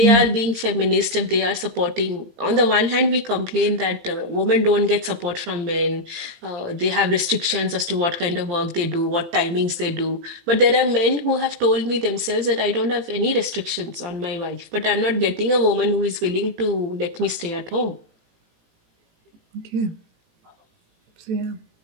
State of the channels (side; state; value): left; late; 18 ms